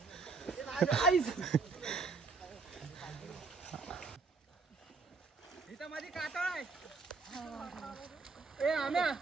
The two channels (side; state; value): left; quieter; 4.2 dB